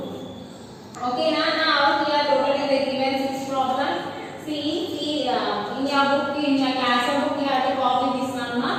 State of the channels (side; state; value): both; identical; correlation 1.00